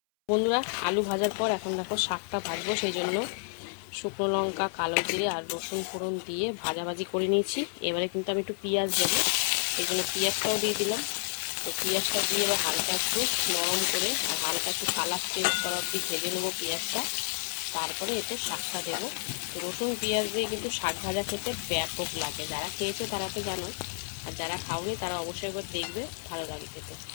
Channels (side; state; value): right; silent; 58 dB below the other